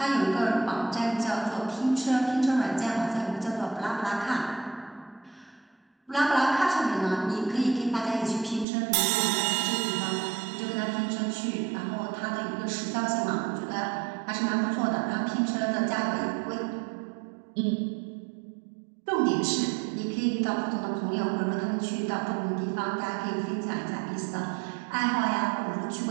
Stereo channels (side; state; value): left; drops out; at 8.7 s